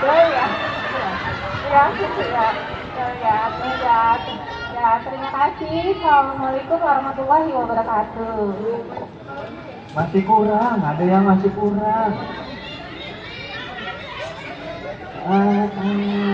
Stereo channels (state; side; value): identical; both; correlation 1.00